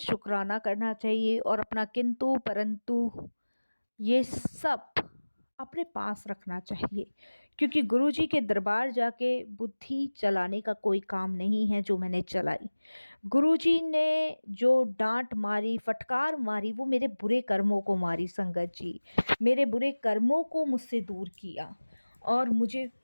करना चाहिए और अपना किंतु परंतु ये सब अपने पास रखना चाहिए, क्योंकि गुरुजी के दरबार जाके बुद्धि चलाने का कोई काम नहीं है जो मैंने चलाई। गुरुजी ने जो डांट मारी, फटकार मारी, वो मेरे बुरे कर्मों को मारी संगत जी, मेरे बुरे कर्मों को मुझसे दूर किया और मुझे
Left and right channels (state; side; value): inverted; both; correlation -1.00